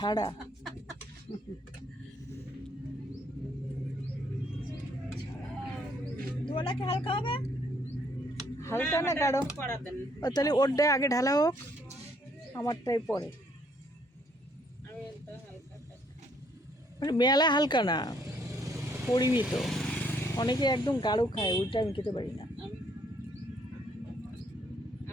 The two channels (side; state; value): both; normal; correlation 0.67